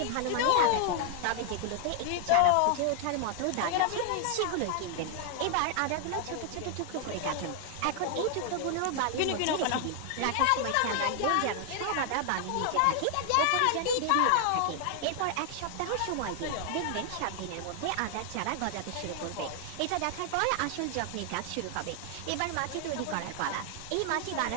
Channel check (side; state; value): both; different; correlation 0.00